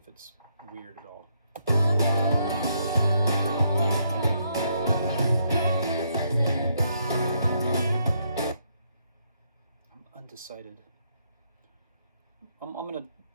it's weird at all. I'm undecided. I'm going to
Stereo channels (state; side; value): inverted; both; correlation -0.75